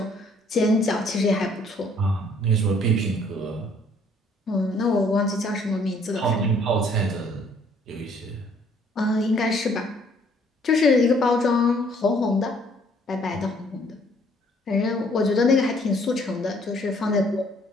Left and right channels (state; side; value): normal; both; correlation 0.62